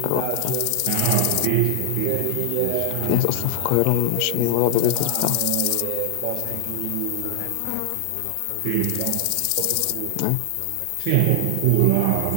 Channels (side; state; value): both; different; correlation 0.00